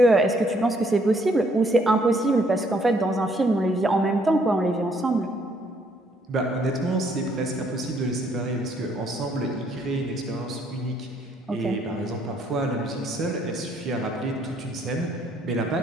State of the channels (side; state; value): both; normal; correlation 0.67